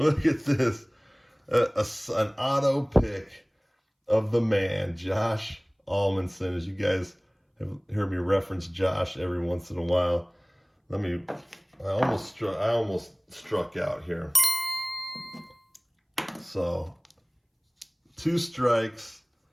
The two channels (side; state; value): both; identical; correlation 1.00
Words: at this. An auto pick of the man, Josh Almanson. As you guys have heard me reference Josh every once in a while. I almost struck out here. So 2 strikes.